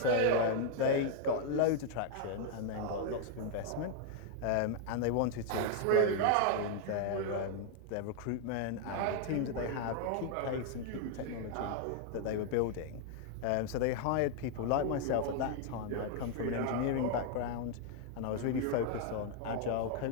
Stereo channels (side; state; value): both; different; correlation 0.00